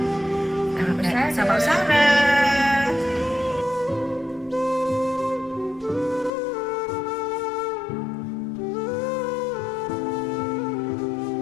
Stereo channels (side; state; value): right; drops out; at 6.3 s